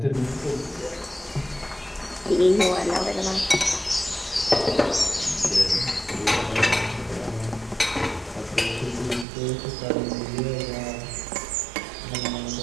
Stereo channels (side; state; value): left; drops out; at 9.2 s